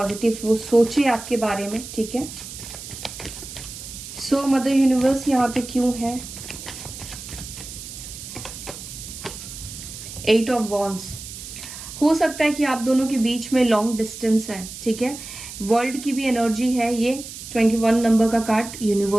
वो सोचे आपके बारे में, ठीक है। सो मदर यूनिवर्स यहाँ पे क्यों है? 8 ऑफ वॉन्ड्स। हो सकता है कि आप दोनों के बीच में लॉन्ग डिस्टेंस है, ठीक है। वर्ल्ड की भी एनर्जी है ये, 21 नंबर का कार्ड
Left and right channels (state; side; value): noise; right; hiss, 12 dB below the sound